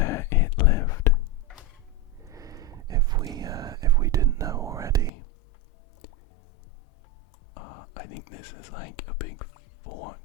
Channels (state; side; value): drops out; right; at 5.1 s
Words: it lived. If we didn't know already. I think this is like a big